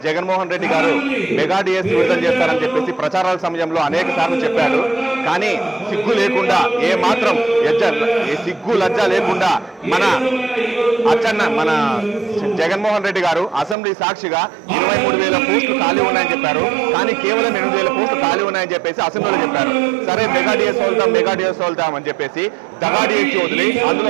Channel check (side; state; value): left; drops out; at 13.8 s